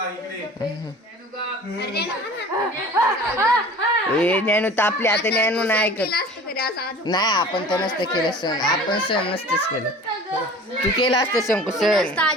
इकडे अरे ना ए ज्ञानू तापले आता ज्ञानू नाही ऐकत केलं असतं तरी असं आज नाही आपण तर नसतं केलं सण आपण सण नसतंच केलं तू केलं असतं शंकू सण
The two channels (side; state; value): both; normal; correlation 0.43